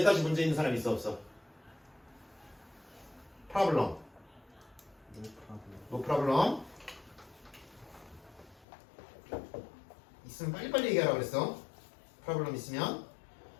문제 있는 사람 있어 없어? 프로블럼. 노 프로블럼. 있으면 빨리빨리 얘기하라 그랬어. 프로블럼 있으면.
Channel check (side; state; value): right; drops out; at 8.7 s